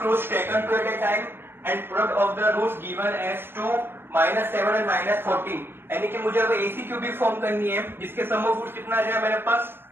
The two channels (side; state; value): left; late; 0.11 ms